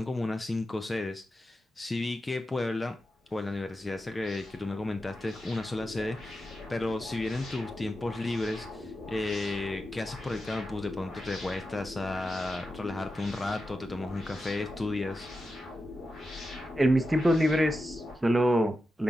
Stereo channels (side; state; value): both; normal; correlation 0.90